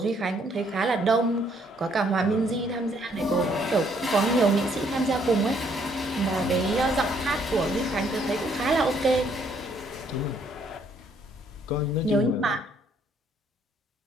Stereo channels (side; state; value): both; normal; correlation 0.67